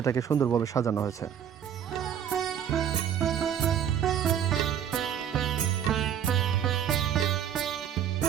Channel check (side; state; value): left; quieter; 9.2 dB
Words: সুন্দরভাবে সাজানো হয়েছে।